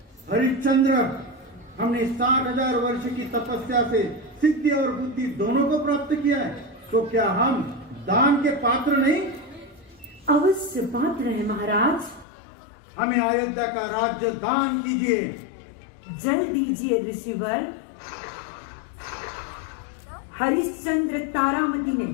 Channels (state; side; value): drops out; right; at 12.2 s